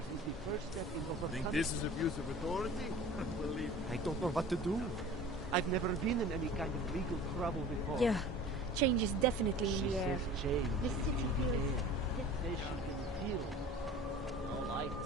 is the first step in overcoming... Think this is abuse of authority? Believe me. I don't know what to do. I've never been in any kind of legal trouble before. Yeah, change is definitely in the air. Says change The city in the feels... air. Says she can feel all life.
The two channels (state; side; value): normal; both; correlation 0.42